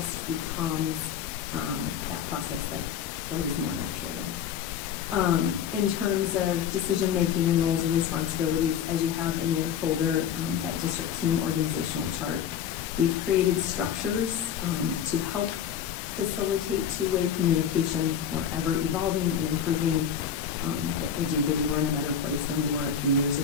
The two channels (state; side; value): quieter; right; 8.2 dB